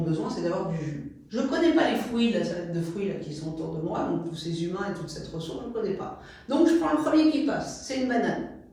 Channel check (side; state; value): both; identical; correlation 1.00